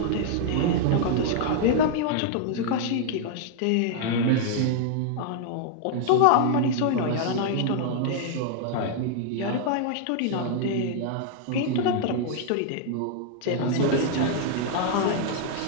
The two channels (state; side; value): different; both; correlation -0.01